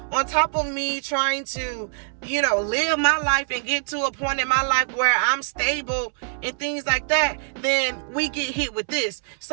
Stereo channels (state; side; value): silent; left; 63 dB below the other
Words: on top of me trying to, live my life and get to a point in my life where I'm stable and things like that, then we get hit with this.